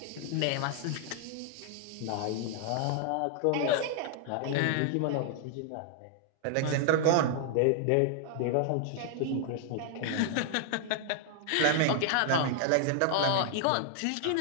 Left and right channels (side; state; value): both; different; correlation 0.00